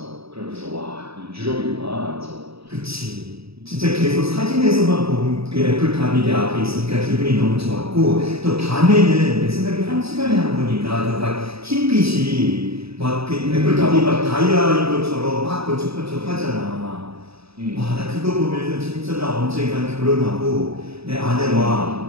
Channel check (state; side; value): late; left; 0.77 ms